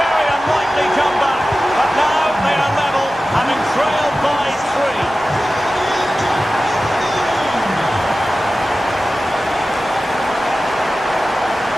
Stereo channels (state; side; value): normal; both; correlation 0.95